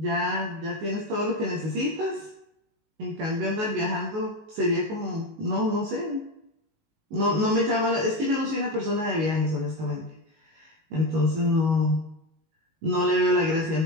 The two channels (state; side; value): late; left; 19 ms